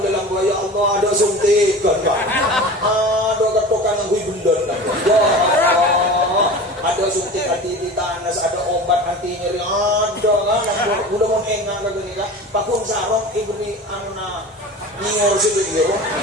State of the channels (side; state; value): both; normal; correlation 0.35